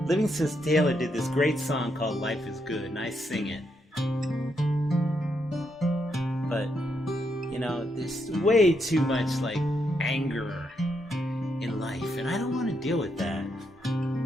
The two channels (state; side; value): normal; both; correlation 0.79